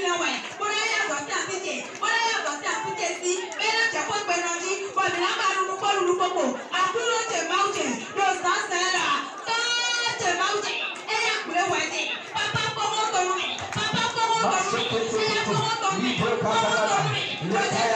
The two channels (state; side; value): identical; both; correlation 1.00